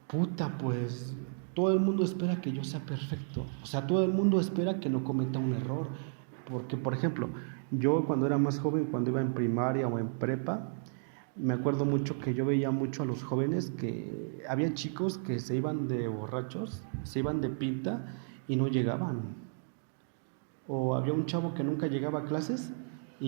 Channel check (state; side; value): silent; left; digital silence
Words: puta, pues todo el mundo espera que yo sea perfecto. O sea, todo el mundo espera que no cometa un error. Porque, por ejemplo, yo cuando era más joven, cuando iba en primaria o en prepa, me acuerdo mucho que yo veía mucho a los jóvenes que había chicos que se iban de borrachos, se iban de pinta y no llegaban. O había un chavo que nunca llegaba a clases